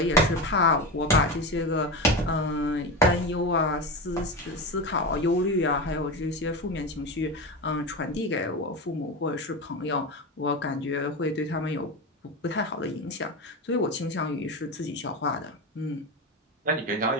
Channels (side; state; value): both; normal; correlation 0.20